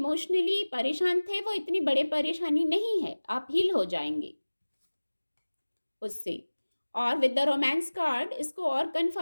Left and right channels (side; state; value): both; inverted; correlation -1.00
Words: परेशान थे वो इतनी बड़े परेशानी नहीं है, आप हील हो जाएंगे उससे। और विद द रोमांस कार्ड इसको और